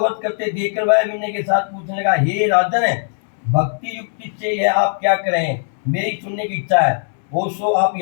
करते देखकर वह विनय के साथ पूछने लगा, हे राजन, भक्ति युक्ति से यह आप क्या करें? मेरी सुनने की इच्छा है। सो आप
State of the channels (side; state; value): right; silent; digital silence